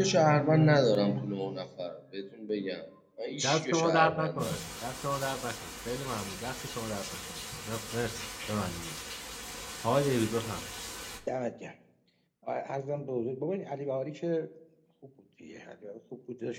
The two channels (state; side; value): identical; both; correlation 1.00